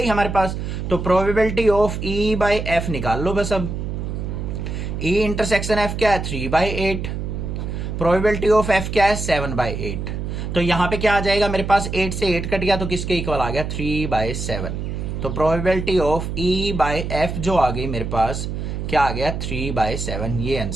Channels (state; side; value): noise; right; hum, 4 dB below the sound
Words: हमारे पास। तो probability of E by F निकाल लो बस। अब ई इंटरसेक्शन एफ क्या है 3/8, प्रोबेबिलिटी ऑफ एफ क्या है 7/8। तो यहां पे क्या आ जाएगा मेरे पास, 8 से 8 कट गया तो किसके इक्वल आ गया 3/7। तो probability of E by F जो आ गई मेरे पास क्या आ गया 3/7। ये